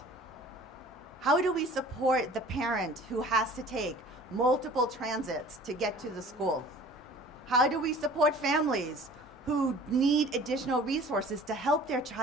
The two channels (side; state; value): both; normal; correlation 0.47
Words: How do we support the parent who has to take multiple transits to get to the school? How do we support families who need additional resources to help their